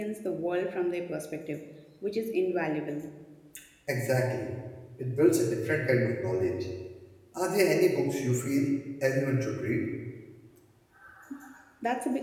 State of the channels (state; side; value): identical; both; correlation 1.00